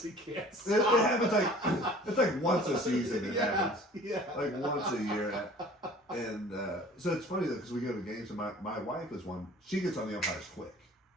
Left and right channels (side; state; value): both; normal; correlation 0.48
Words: he can't stop. It happens it's like once a season. It happens. Yeah. Like once a year. And so it's funny though, because we go to games, and my wife is one. She gets on the umpires quick.